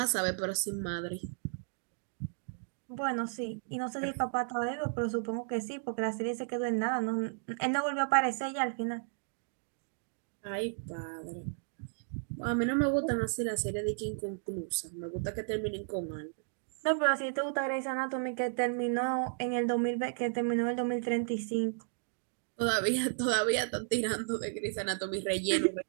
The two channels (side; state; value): left; silent; digital silence